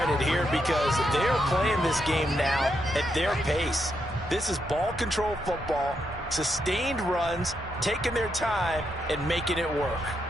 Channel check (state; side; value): normal; both; correlation 0.81